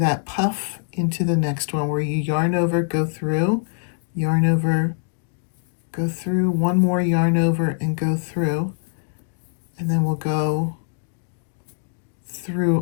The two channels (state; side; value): silent; right; digital silence